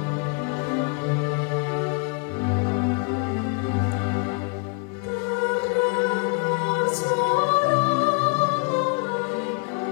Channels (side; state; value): right; quieter; 32.1 dB